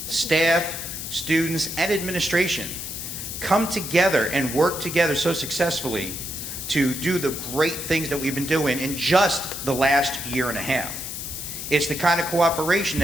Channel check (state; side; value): noise; left; hiss, 7 dB below the sound